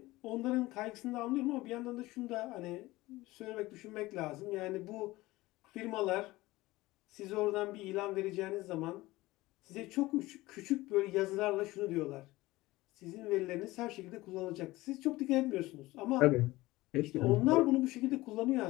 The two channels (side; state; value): right; quieter; 19.1 dB